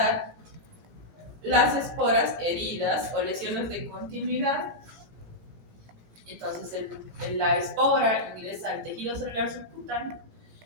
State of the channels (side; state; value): left; late; 17 ms